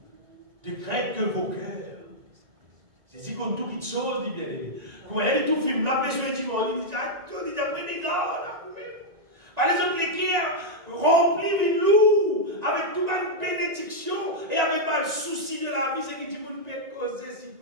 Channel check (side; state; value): left; late; 1.9 ms